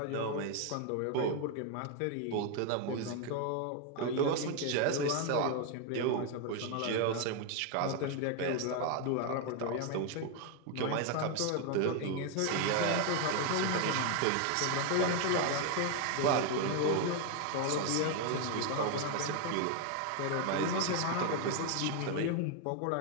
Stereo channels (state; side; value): different; both; correlation 0.01